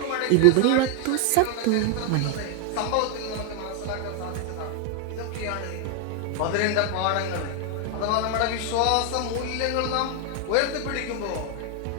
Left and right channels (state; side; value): different; both; correlation 0.00